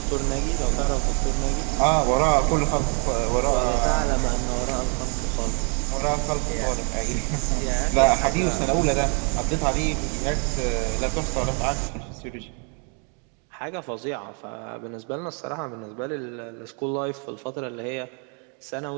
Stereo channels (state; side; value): quieter; left; 38.4 dB